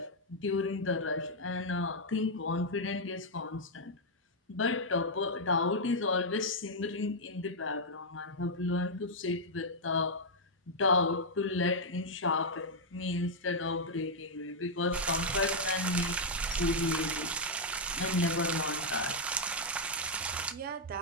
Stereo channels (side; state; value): both; normal; correlation -0.04